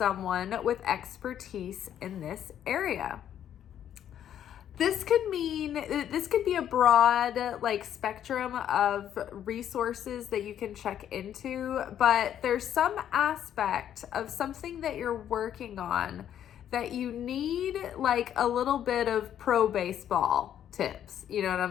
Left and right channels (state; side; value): quieter; right; 10.2 dB